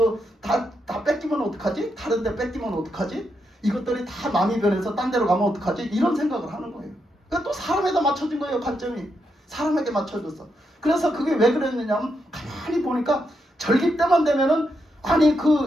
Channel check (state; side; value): normal; both; correlation 0.82